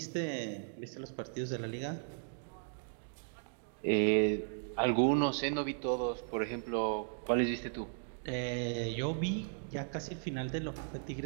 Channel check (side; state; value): left; silent; digital silence